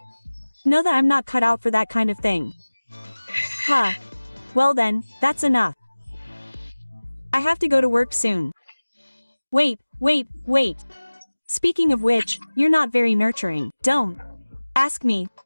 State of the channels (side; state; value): both; inverted; correlation -1.00